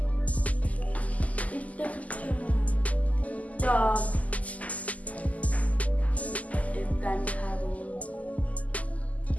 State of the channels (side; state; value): right; late; 0.073 ms